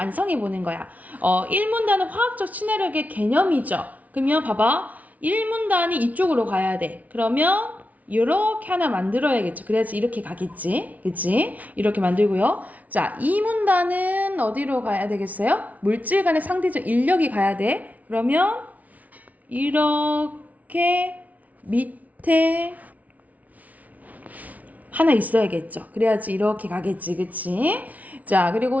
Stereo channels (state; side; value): late; left; 0.072 ms